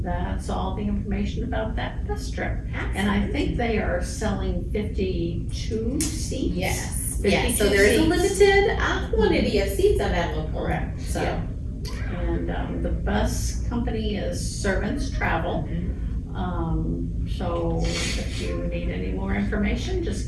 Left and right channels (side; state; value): both; identical; correlation 1.00